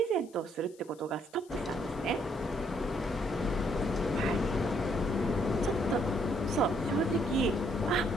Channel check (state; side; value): noise; left; hiss, 27 dB below the sound